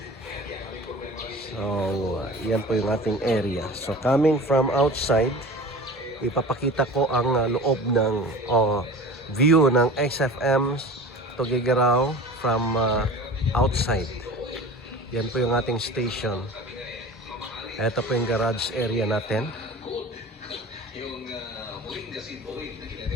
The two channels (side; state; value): both; normal; correlation 0.37